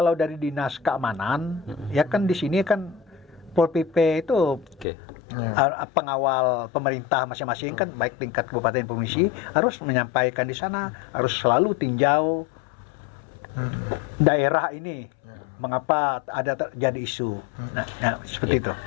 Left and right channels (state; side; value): drops out; right; at 4.9 s